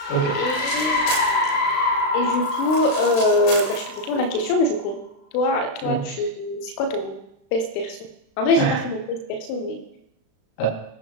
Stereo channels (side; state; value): right; late; 36 ms